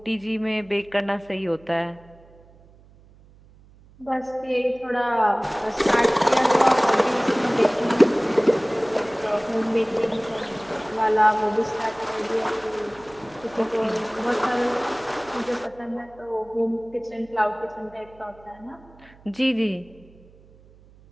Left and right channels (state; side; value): noise; right; hum, 26 dB below the sound